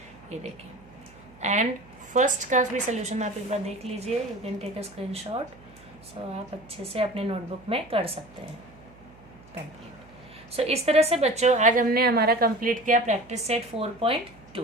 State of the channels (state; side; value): noise; right; hum, 24 dB below the sound